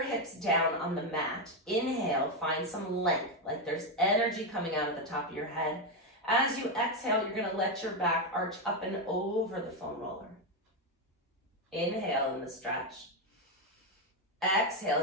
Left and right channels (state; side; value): normal; both; correlation 0.06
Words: hips down on the mat. Inhale, find some length, like there's energy coming out of the top of your head. As you exhale, you're gonna let your back arch up and over the foam roller. Inhale in the stretch. Exhale